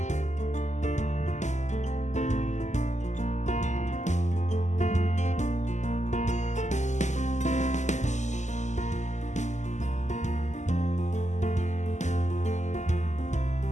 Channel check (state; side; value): late; right; 0.34 ms